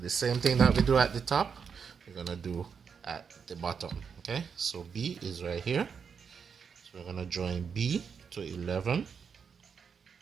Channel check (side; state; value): left; quieter; 6.4 dB